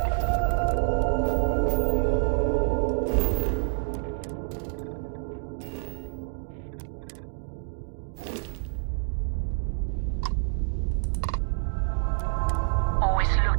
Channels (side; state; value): left; silent; digital silence